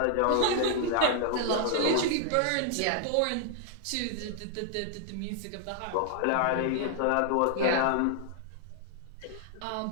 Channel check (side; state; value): both; different; correlation 0.00